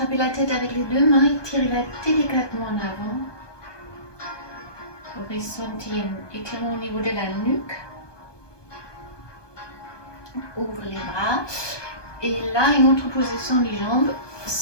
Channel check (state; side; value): late; right; 1.2 ms